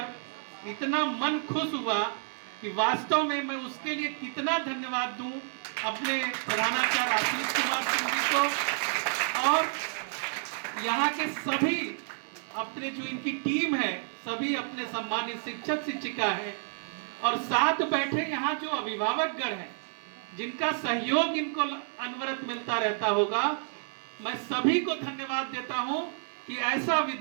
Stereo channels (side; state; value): left; silent; digital silence